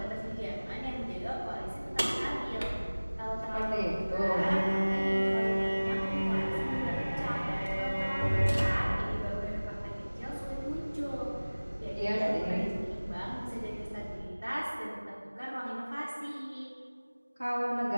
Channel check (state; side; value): inverted; both; correlation -1.00